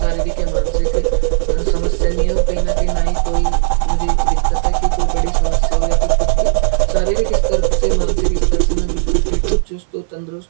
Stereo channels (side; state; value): left; silent; 59 dB below the other